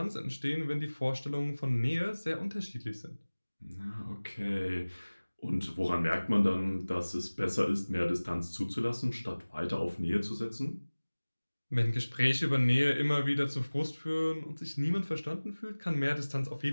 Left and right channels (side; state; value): both; inverted; correlation -1.00